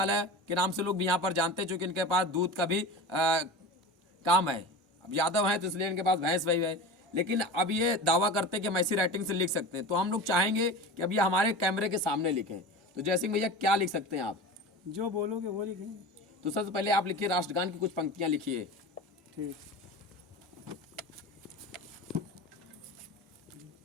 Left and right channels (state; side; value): normal; both; correlation 0.31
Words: के नाम से लोग भी यहाँ पर जानते हैं, चूँकि इनके पास दूध का भी काम है। अब यादव हैं तो इसलिए इनके पास भैंस वही है। लेकिन अब ये दावा करते हैं कि हम ऐसी राइटिंग से लिख सकते हैं, तो हम लोग चाहेंगे कि अब ये हमारे कैमरे के सामने लिखें। तो जय सिंह भैया, क्या लिख सकते हैं आप? जो बोलोगे वो लिखेंगे। तो सबसे पहले आप लिखिए, राष्ट्रगान की कुछ पंक्तियां लिखिए। ठीक।